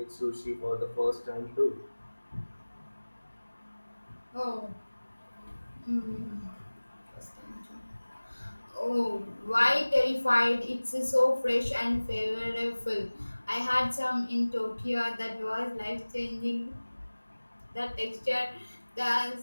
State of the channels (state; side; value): inverted; both; correlation -1.00